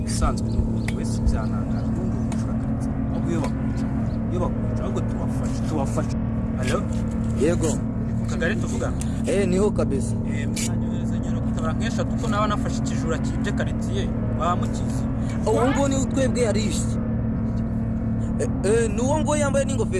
Bisanzwe n'umuntu wese byanangaje n'undi umushakaritse. Aguye bakwica ahubwo tuwafasha. Alo? Yego. Kagari tuvuga. Niho kabisa. Mwanyohereza nyero kutabara nkesha kuko nawe nafashe ikijura kije karitiye bamukize. Uwo ngo ni utwebwe yarishe. Nuwo ngo yambaye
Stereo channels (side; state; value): both; identical; correlation 1.00